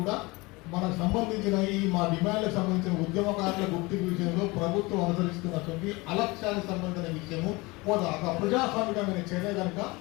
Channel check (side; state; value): right; quieter; 24.0 dB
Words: కూడా మనకు సంబంధించిన ఈ మా డిమాండ్లకు సంబంధించిన ఉద్యమకారుల గుర్తింపు విషయంలో ప్రభుత్వం అనుసరిస్తున్నటువంటి అలక్ష్యానికి సంబంధించిన విషయము ఒక ప్రజాస్వామికమైన చర్య కనుక